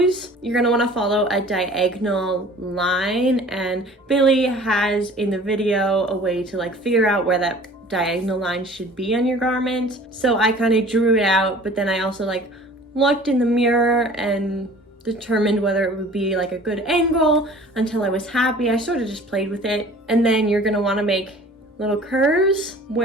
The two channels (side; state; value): both; normal; correlation 0.47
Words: you're going to want to follow a diagonal line, and Billy has in the video a way to like figure out where that diagonal line should be on your garment. So I kind of drew it out, but then I also like looked in the mirror and determined whether it would be like a good angle until I was happy. I sort of just played with it. And then you're going to want to make little curves